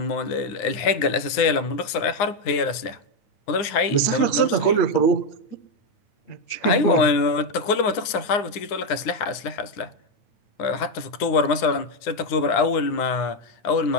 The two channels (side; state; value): right; late; 9.7 ms